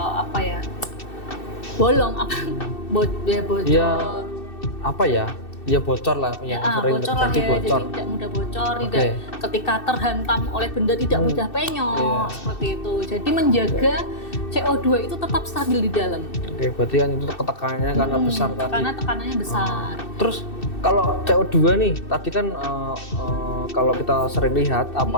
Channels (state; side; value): late; right; 2.6 ms